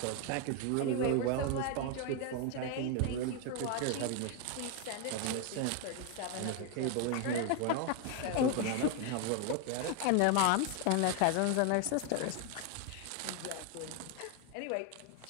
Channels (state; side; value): different; both; correlation 0.01